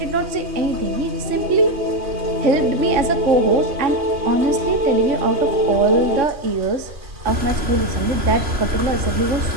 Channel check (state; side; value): late; left; 3.5 ms